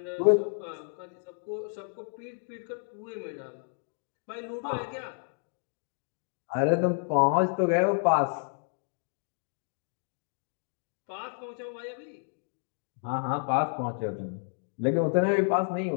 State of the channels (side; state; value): right; silent; 57 dB below the other